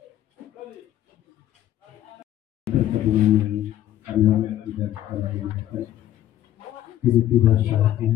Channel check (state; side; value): quieter; right; 12.6 dB